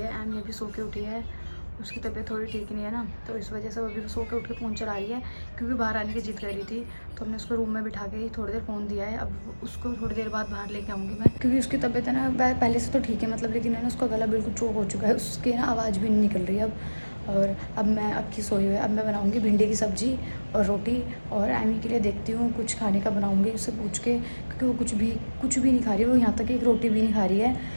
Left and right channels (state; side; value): inverted; both; correlation -1.00